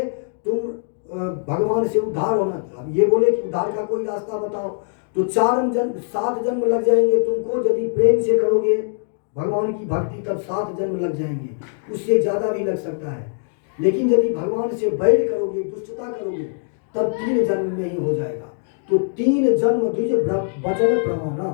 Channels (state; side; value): silent; right; digital silence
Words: तुम भगवान से उद्धार होना, अब ये बोले कि उद्धार का कोई रास्ता बताओ, तो 7 जन्म लग जाएंगे तुमको। यदि प्रेम से करोगे भगवान की भक्ति तब 7 जन्म लग जाएंगे, उससे ज्यादा भी लग सकता है। लेकिन यदि भगवान से बैर करोगे, दुष्टता करोगे, तब 3 जन्म में ही हो जाएगा। तो 3 जन्म द्विज वचन प्रमाणा,